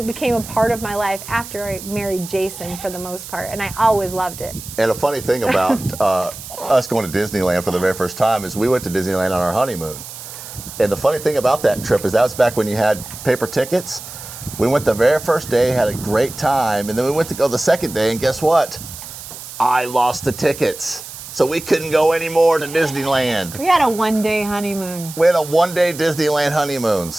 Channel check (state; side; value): noise; right; hiss, 13 dB below the sound